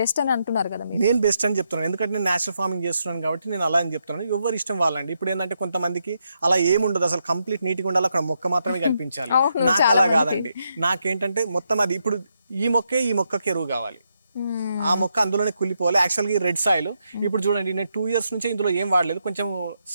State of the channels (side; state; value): both; inverted; correlation -0.81